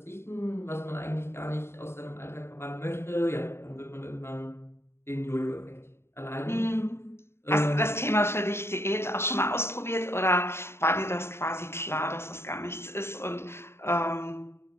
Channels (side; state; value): right; late; 0.12 ms